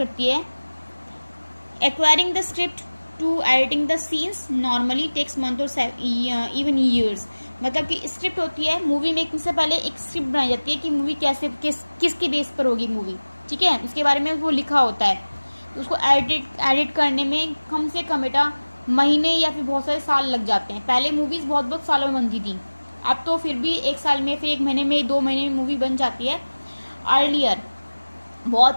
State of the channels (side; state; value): both; inverted; correlation -1.00